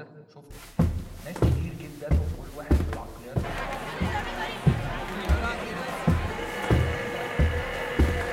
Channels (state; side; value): identical; both; correlation 1.00